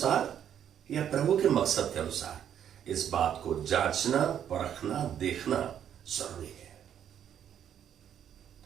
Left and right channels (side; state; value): left; quieter; 9.5 dB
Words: या प्रभु के मकसद के अनुसार? इस बात को जांचना, परखना, देखना जरूरी है।